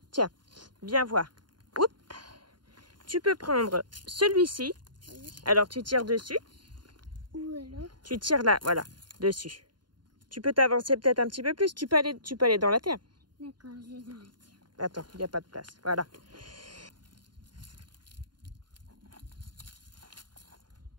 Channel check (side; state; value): left; late; 0.71 ms